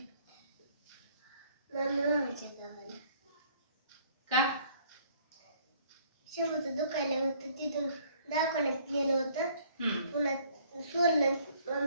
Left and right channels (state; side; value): inverted; both; correlation -0.59